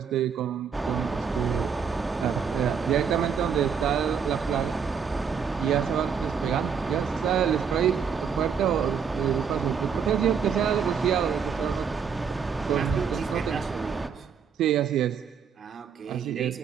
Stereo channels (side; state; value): left; quieter; 6.7 dB